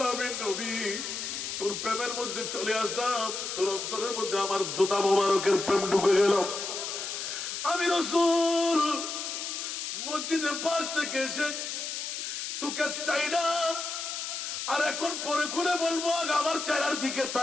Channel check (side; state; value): left; noise; hiss, 5 dB below the sound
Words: নবী তোর প্রেমের মধ্যে চলে আসলাম তোর অন্তরের মধ্যে আমার জুতা মোবারকের প্রেম ঢুকে গেল আমি রাসূল মসজিদে পাক থেকে এসে তোকে চাই না আর এখন পরে খুলে বলবো আমার চেহারার দিকে